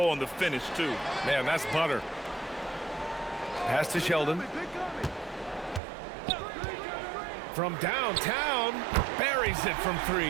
on the finish, too. Man, that's butter. Pass to Sheldon. From downtown, buries it from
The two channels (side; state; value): left; drops out; at 5.8 s